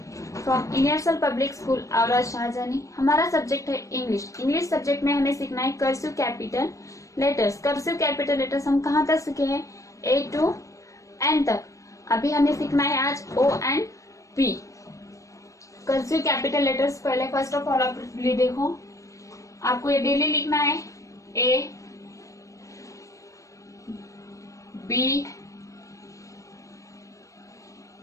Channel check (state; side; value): late; right; 0.16 ms